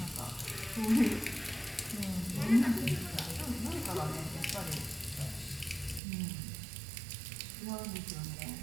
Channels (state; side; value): drops out; left; at 6.0 s